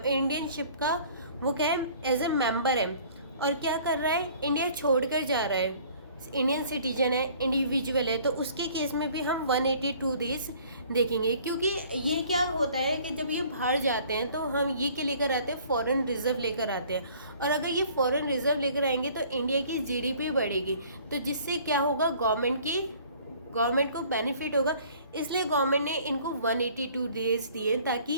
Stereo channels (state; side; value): inverted; both; correlation -0.54